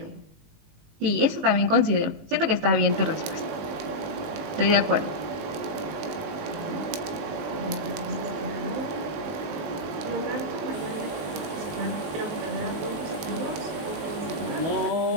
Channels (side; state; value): left; late; 19 ms